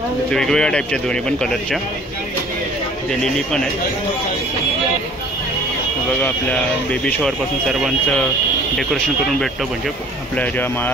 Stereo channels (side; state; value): both; normal; correlation 0.51